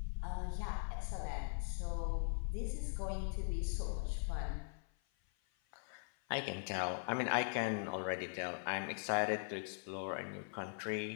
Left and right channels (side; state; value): right; silent; 50 dB below the other